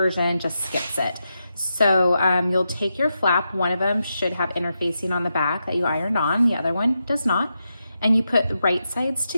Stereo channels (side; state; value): both; inverted; correlation -0.86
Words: just skips it. So you'll take your flap, one of them should have interfacing on the back that you ironed on, the other one does not, and you put the right sides